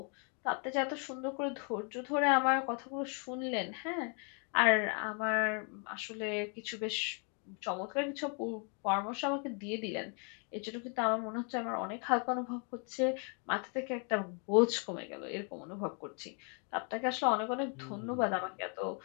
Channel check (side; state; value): right; quieter; 38.5 dB